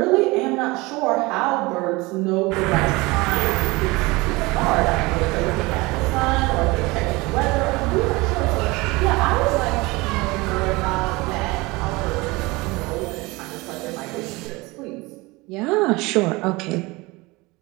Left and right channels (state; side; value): quieter; left; 23.3 dB